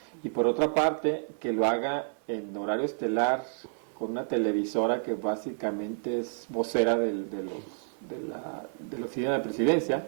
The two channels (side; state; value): left; silent; digital silence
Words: y por otra parte, que lo haga en horario estelar con una televisora que básicamente es vocera de la oficina de la presidencia,